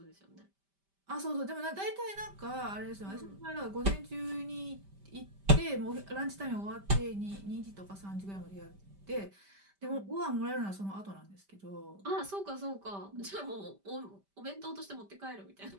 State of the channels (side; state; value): left; late; 5.1 ms